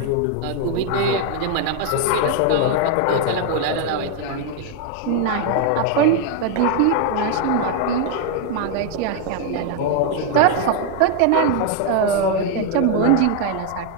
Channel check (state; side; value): different; both; correlation 0.01